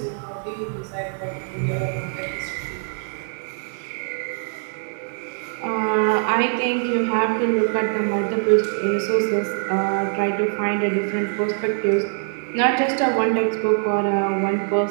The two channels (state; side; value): silent; left; digital silence